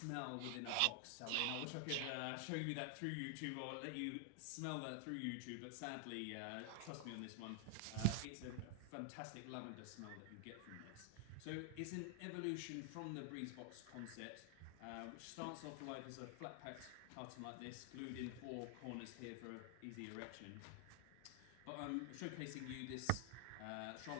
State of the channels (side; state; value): both; different; correlation 0.00